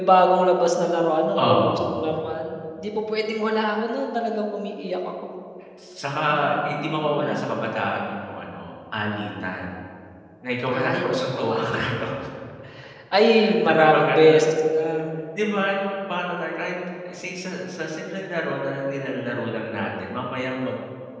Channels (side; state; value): both; identical; correlation 1.00